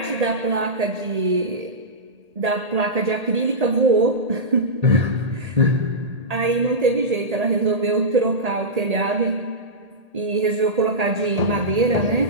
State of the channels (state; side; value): late; left; 1.8 ms